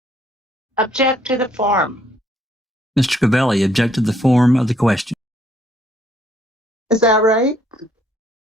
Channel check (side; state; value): both; normal; correlation 0.66